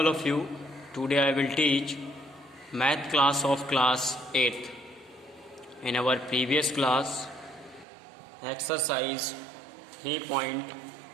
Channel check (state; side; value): drops out; left; at 7.9 s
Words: of you. Today I will teach math class of class 8th. In our previous class exercise